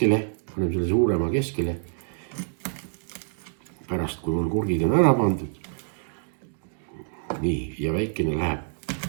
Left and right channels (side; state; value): left; silent; digital silence